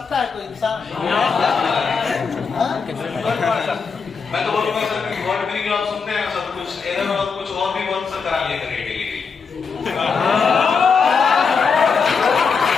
है कोई इंसान? मैं तो बोलूंगा सर कि वर्ड मीनिंग आप सुनते हैं सब कुछ, इधर और कुछ और भी बहुत सर करा लिया करेंगे।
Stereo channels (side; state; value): right; quieter; 5.5 dB